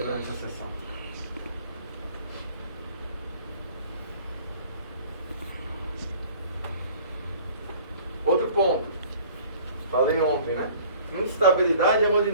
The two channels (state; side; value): inverted; both; correlation -0.50